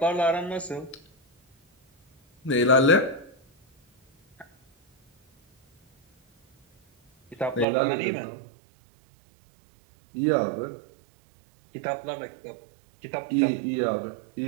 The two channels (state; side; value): drops out; left; at 7.7 s